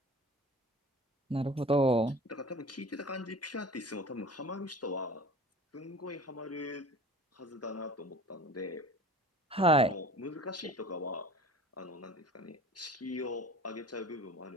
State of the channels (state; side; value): normal; both; correlation 0.41